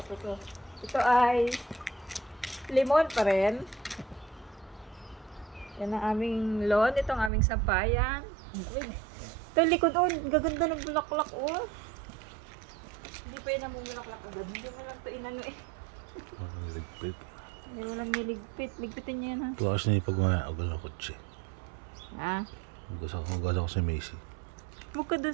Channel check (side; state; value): left; drops out; at 7.3 s